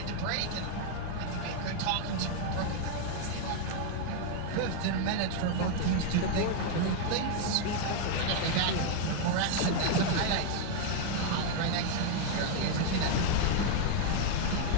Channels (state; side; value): different; both; correlation 0.00